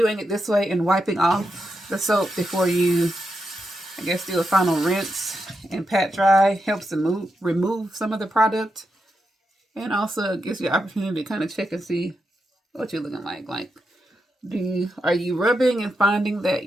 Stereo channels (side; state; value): both; normal; correlation 0.85